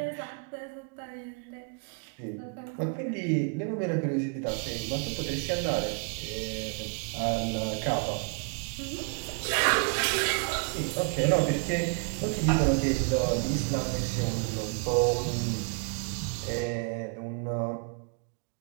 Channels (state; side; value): quieter; left; 36.3 dB